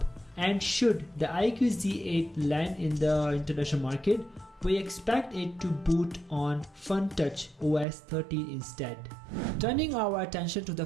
And should the IQOO Z8 land in the international market, we expect it to boot on FunTouch OS 13 instead. Turning our attention to the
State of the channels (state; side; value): drops out; left; at 7.9 s